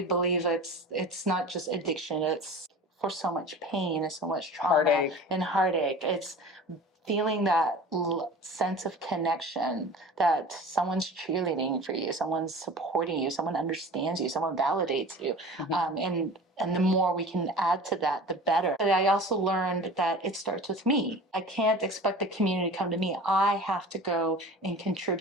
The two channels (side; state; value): both; normal; correlation 0.39